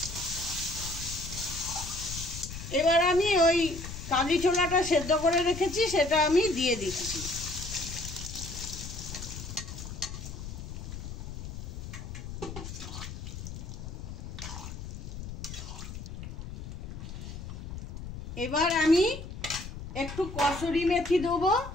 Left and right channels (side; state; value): left; noise; rumble, 9 dB below the sound